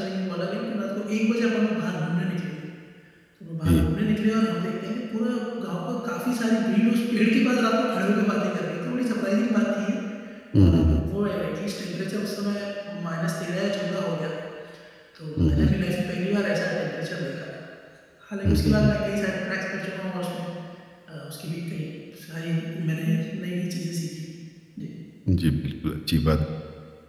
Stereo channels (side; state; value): both; identical; correlation 1.00